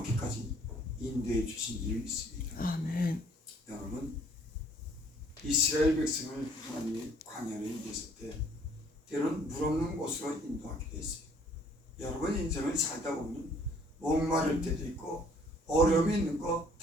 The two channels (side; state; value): both; normal; correlation 0.60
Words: 인도해 주신 줄 믿습니다. 아멘. 여러분, 이스라엘 백성을 하나님이 광야로 인도했을 때 때로는 물 없는 곳으로 인도하기도 했어요. 여러분 인생을 살다 보면 목마를 때도 있고 어려움이 있는 거